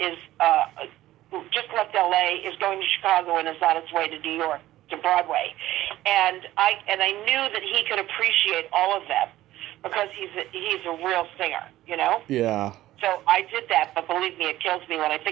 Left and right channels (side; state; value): left; quieter; 15.1 dB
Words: just left L.A., is going to Chicago, and is on its way to New York, to Broadway. And I knew that he could appreciate all of them because he's a real singer, Yeah. So I did that, but believe me, it kills me when I